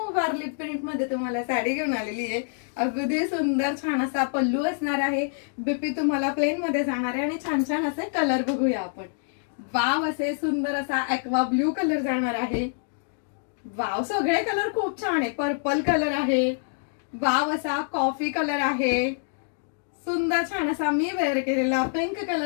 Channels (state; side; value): silent; right; digital silence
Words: वारली प्रिंट मध्ये तुम्हाला साडी घेऊन आलेली आहे। अगदी सुंदर छान असा पल्लू असणार आहे। बीपी तुम्हाला प्लेन मध्ये जाणार आहे आणि छान छान असे कलर बघूया आपण। वाव, असे सुंदर असा एक्वा ब्ल्यू कलर जाणार आहे। वाव, सगळे कलर खूप छान आहे। पर्पल कलर आहे, वाव असा कॉफी कलर आहे, सुंदर छान असा मी वेअर केलेला पिंक